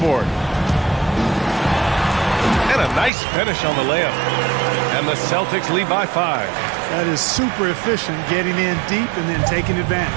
And a nice finish on the layup. And the Celtics lead by 5. That is super efficient, getting in deep and then taking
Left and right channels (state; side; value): drops out; left; at 3.1 s